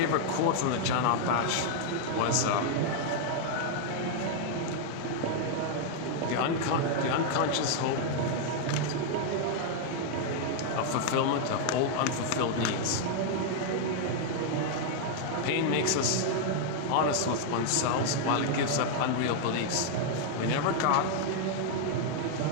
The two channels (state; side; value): different; both; correlation 0.00